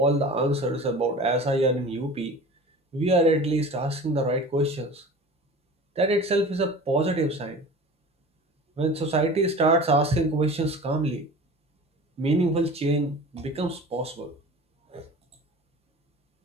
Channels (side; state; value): both; normal; correlation 0.38